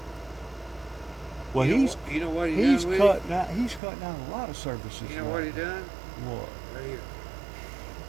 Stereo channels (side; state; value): left; drops out; at 3.8 s